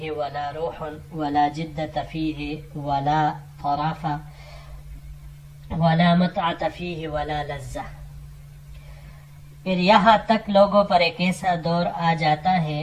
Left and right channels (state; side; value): identical; both; correlation 1.00